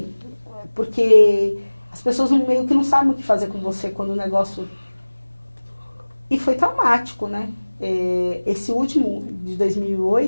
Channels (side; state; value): both; inverted; correlation -1.00